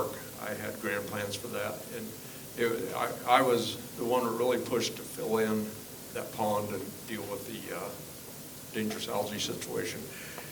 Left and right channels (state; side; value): identical; both; correlation 1.00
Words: I had grand plans for that, and I was the one that really pushed to fill in that pond and deal with the dangerous algae situation.